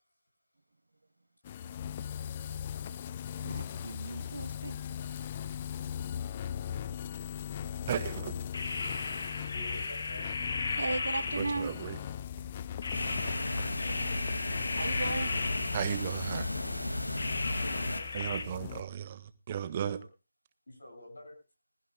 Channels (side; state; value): both; inverted; correlation -0.80